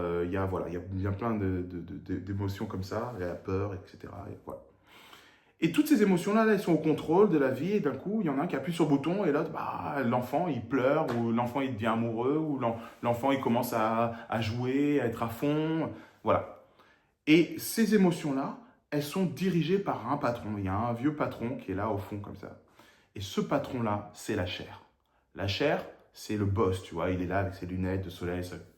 y a plein d'émotions comme ça, il y a peur, etc. Et, voilà. Et toutes ces émotions-là, elles sont au contrôle de la vie, et d'un coup, il y en a un qui appuie sur le bouton, et l'autre, l'enfant, il pleure, ou l'enfant, il devient amoureux, ou l'enfant, il commence à jouer, à être à fond, voilà. Et ces émotions-là, elles sont dirigées par un patron. Il y a un vieux patron qui est là au fond, comme ça. Et ce patron-là, c'est la chair. La chair, c'est le boss, tu vois, il est là avec ses lunettes de soleil,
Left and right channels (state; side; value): identical; both; correlation 1.00